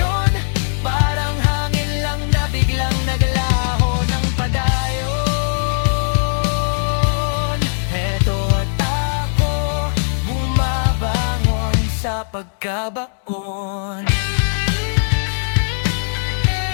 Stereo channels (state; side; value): silent; right; digital silence